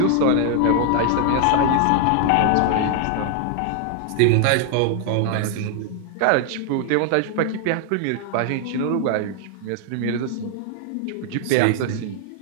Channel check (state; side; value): different; both; correlation 0.00